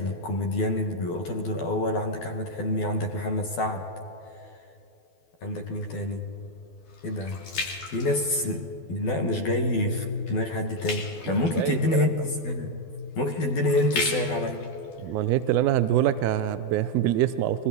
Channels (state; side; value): late; right; 12 ms